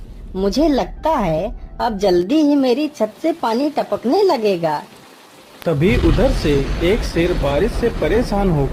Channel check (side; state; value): both; identical; correlation 1.00